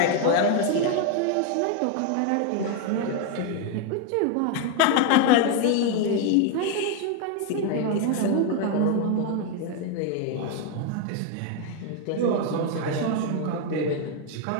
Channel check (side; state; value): both; different; correlation 0.01